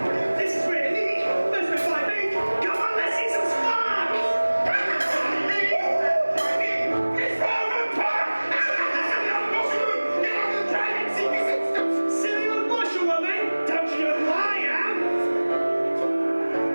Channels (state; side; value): inverted; both; correlation -1.00